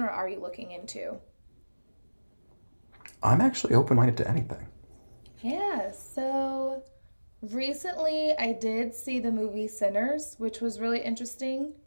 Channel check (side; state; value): both; inverted; correlation -1.00